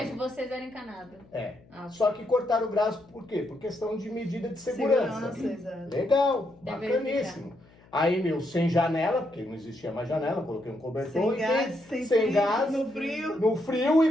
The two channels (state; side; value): noise; left; hum, 27 dB below the sound